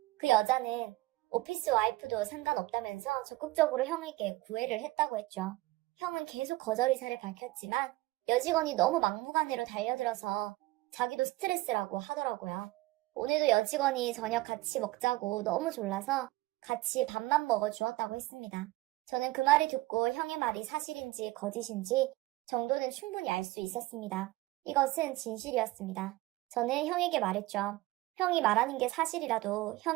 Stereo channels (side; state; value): left; quieter; 19.2 dB